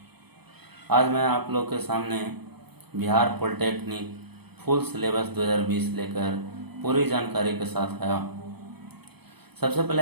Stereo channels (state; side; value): late; left; 0.97 ms